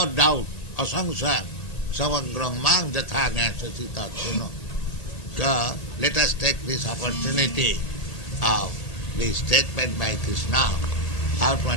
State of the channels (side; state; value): right; late; 1.9 ms